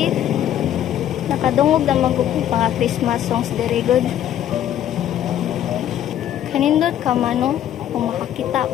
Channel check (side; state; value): right; quieter; 11.2 dB